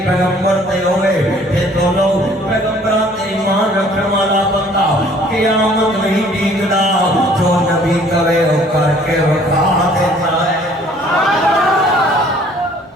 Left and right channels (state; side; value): normal; both; correlation 0.56